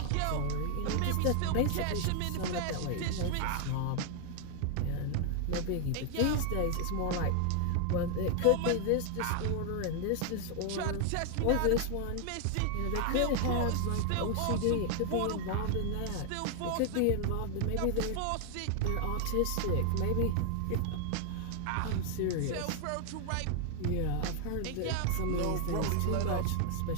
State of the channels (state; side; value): different; both; correlation 0.00